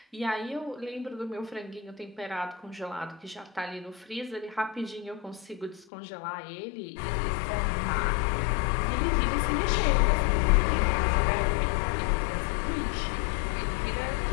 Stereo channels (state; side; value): drops out; right; at 5.9 s